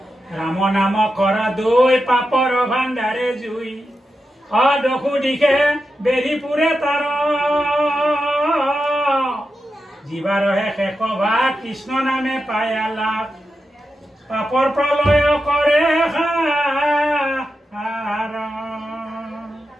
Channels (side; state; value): both; normal; correlation 0.89